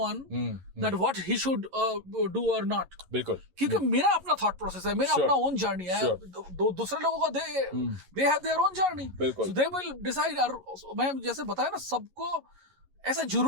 that what he should do और नॉट. बिल्कुल. क्योंकि मेरा अपना थॉट प्रोसेस है, मेरा अपना ओन जर्नी है. दूसरे लोगों का they have their own journey, so they will decide. मैं जैसे बताया ना, सबको ऐसा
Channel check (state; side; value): late; left; 11 ms